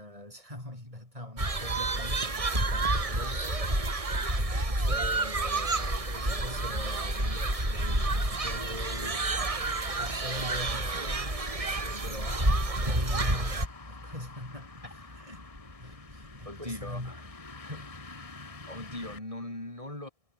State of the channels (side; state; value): left; late; 1.6 ms